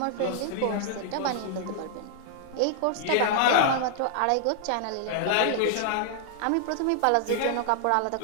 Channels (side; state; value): both; different; correlation -0.01